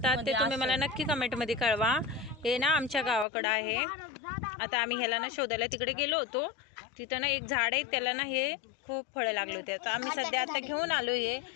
ते तुम्ही मला नक्की कमेंट मध्ये कळवा. हे ना आमच्या गावाकडं आहे. आता आम्ही ह्याला ना शोधायला तिकडे गेलो होतो. तिथं ना एक झाड आहे, त्याला ना हे खूप फळं लागले होते. आता आम्ही सध्या आता घेऊन आलो. हे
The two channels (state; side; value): drops out; right; at 3.2 s